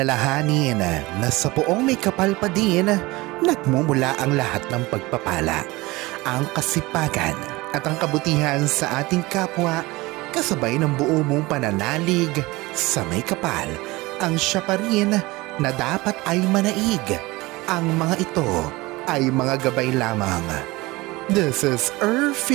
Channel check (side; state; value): left; quieter; 21.5 dB